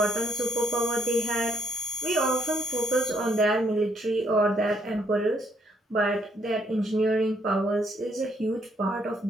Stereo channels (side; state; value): both; normal; correlation 0.71